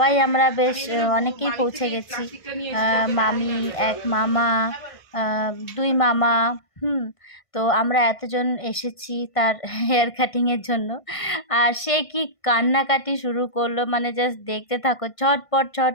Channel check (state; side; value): late; right; 1.5 ms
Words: আমরা বেশ অনেকেই পৌঁছে গেছি। মামি, এক মামা, দুই মামা, তো আমরা এতজন এসেছি তার হেয়ার কাটিংয়ের জন্য। আর সে কি কান্নাকাটি শুরু করলো, মানে জাস্ট দেখতে থাকো, ছটপট